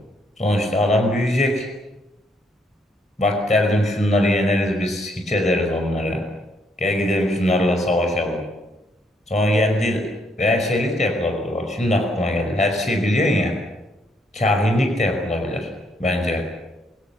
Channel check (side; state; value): both; normal; correlation 0.71